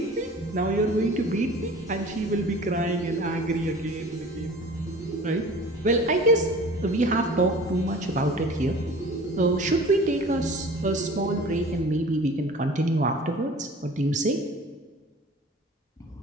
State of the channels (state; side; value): normal; both; correlation 0.43